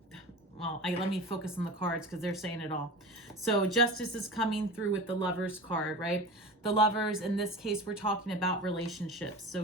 let me focus on the cards because they're saying it all. So justice is coming through with the Lovers card, right? The Lovers, in this case, we're talking about relationships. So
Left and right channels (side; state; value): both; normal; correlation 0.32